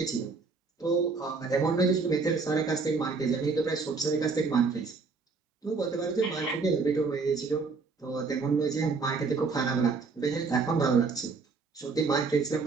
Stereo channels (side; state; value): left; quieter; 4.5 dB